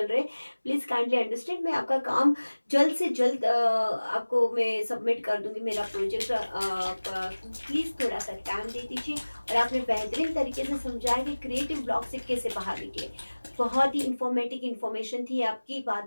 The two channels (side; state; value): both; inverted; correlation -1.00